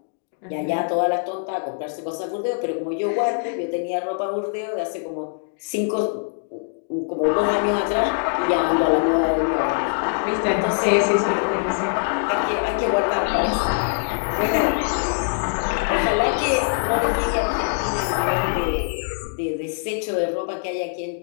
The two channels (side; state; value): right; silent; digital silence